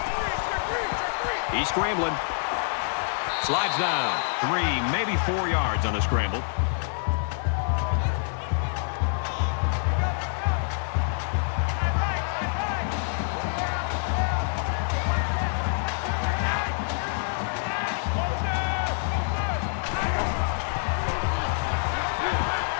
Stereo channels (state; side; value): silent; right; 60 dB below the other